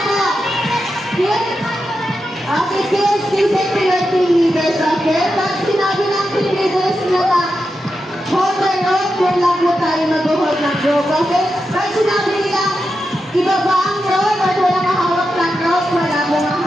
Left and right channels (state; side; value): normal; both; correlation 0.88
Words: po. Okay, kids, listen to your team leaders, okay? Pag sinabi ng team leaders na hold the rope, doon lang po tayo mag-hold ng rope, okay? Pag sinabi nila, ibaba ang rope at walang hawak ng rope, wala mong